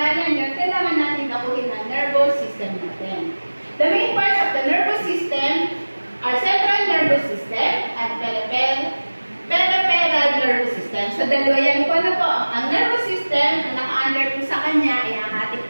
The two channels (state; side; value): inverted; both; correlation -1.00